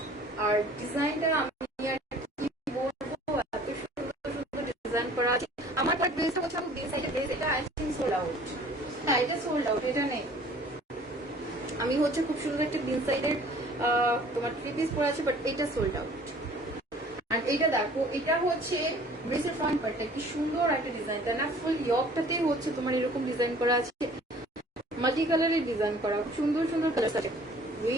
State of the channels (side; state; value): both; normal; correlation 0.51